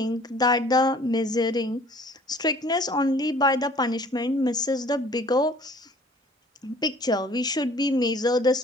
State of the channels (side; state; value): both; normal; correlation 0.52